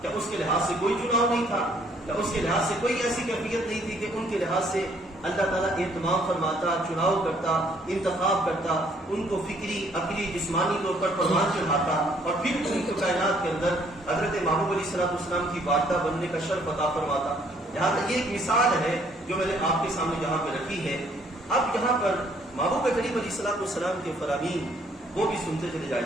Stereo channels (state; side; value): normal; both; correlation 0.64